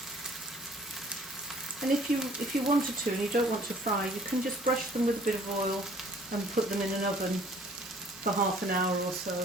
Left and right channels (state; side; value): normal; both; correlation 0.56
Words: And if you wanted to and you don't want to fry, you can just brush them with a bit of oil and put them in an oven for half an hour or so.